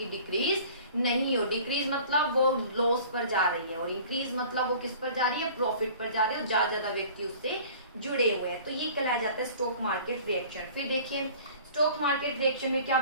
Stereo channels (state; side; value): inverted; both; correlation -0.46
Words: डिक्रीज नहीं हो। डिक्रीज मतलब वो लॉस पर जा रही है, और इंक्रीज मतलब वो किस पर जा रही है, प्रॉफिट पर जा रही है, और ज्यादा व्यक्ति उससे जुड़े हुए हैं। तो ये कहलाया जाता है स्टॉक मार्केट रिएक्शन। फिर देखिए स्टॉक मार्केट रिएक्शन में क्या